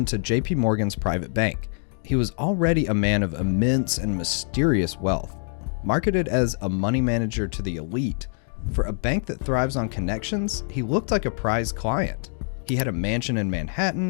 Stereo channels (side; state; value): right; silent; 59 dB below the other